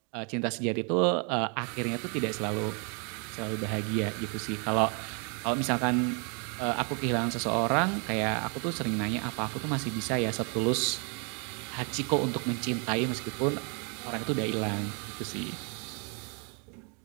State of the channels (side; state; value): left; quieter; 36.4 dB